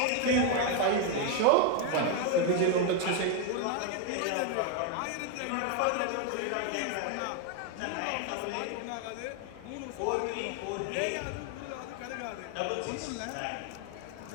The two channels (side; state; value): both; different; correlation 0.01